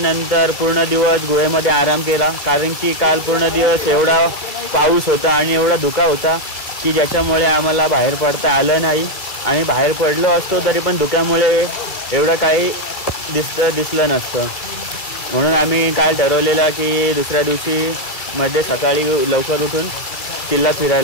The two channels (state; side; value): late; right; 2.4 ms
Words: पूर्ण दिवस गुहेमध्ये आराम केला. कारण की काल पूर्ण दिवस एवढा पाऊस होता आणि एवढा धुका होता की ज्याच्यामुळे आम्हाला बाहेर पडता आलं नाही. आणि बाहेर पडलो असतो तरी पण धुक्यामुळे एवढं काही दिसलं नसतं. म्हणून आम्ही काल ठरवलेलं की दुसऱ्या दिवशी मध्ये सकाळी लवकर उठून किल्ला